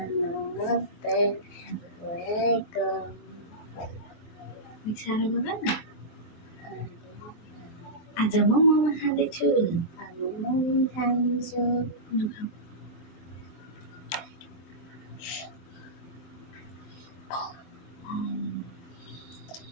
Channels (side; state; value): right; late; 24 ms